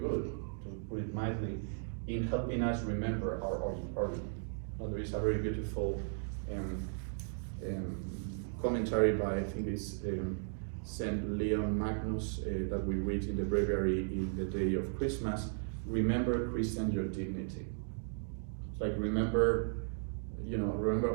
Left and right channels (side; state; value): left; silent; digital silence